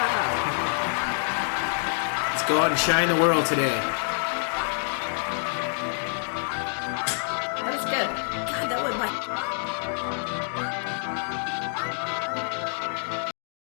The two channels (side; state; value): right; silent; digital silence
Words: Let's go out and shine the world today.